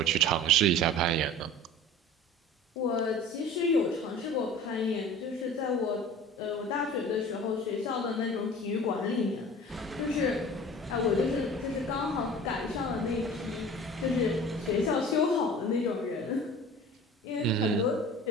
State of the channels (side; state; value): both; normal; correlation 0.41